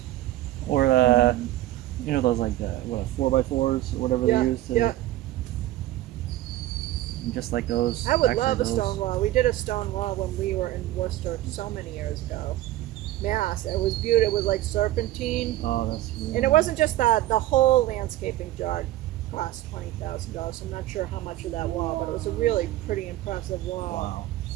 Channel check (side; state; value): left; quieter; 15.2 dB